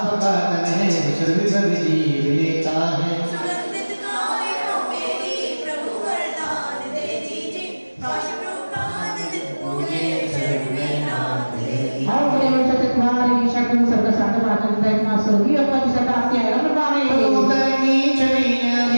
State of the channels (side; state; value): both; inverted; correlation -1.00